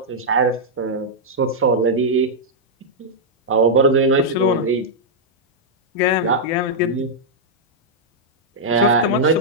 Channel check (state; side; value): normal; both; correlation -0.06